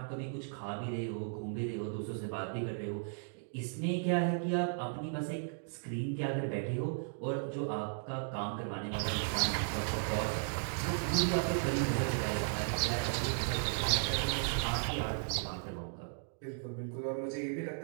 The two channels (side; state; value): left; silent; digital silence